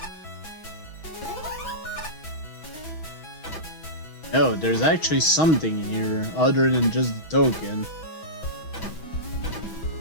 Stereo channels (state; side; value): late; right; 6.3 ms